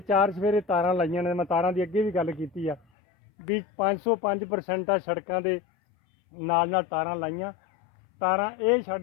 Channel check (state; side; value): drops out; right; at 2.8 s